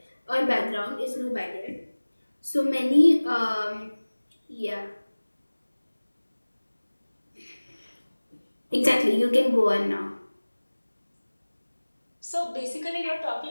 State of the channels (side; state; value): both; inverted; correlation -1.00